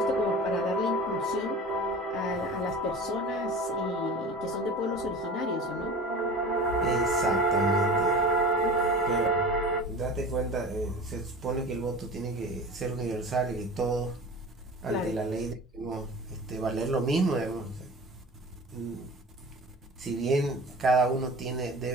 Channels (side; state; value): both; normal; correlation 0.36